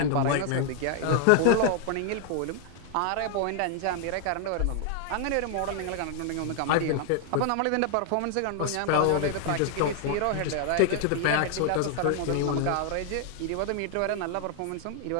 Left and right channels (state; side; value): different; both; correlation 0.00